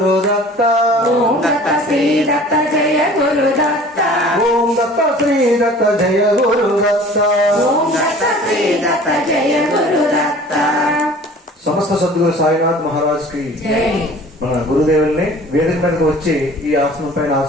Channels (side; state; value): both; normal; correlation 0.46